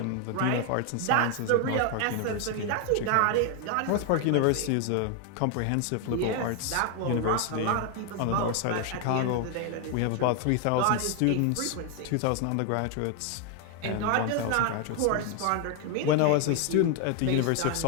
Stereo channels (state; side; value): different; both; correlation 0.01